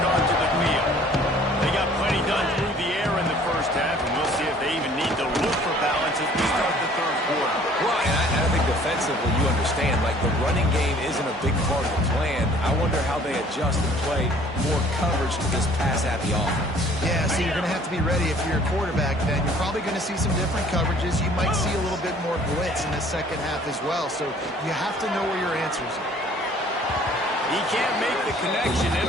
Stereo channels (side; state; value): both; normal; correlation 0.54